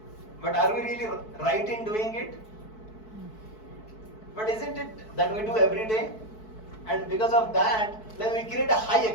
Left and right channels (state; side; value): late; right; 4.6 ms